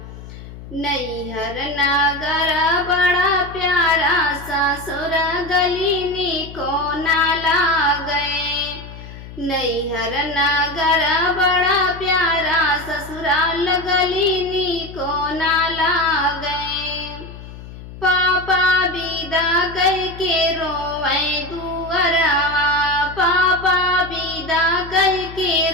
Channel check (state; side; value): noise; left; hum, 14 dB below the sound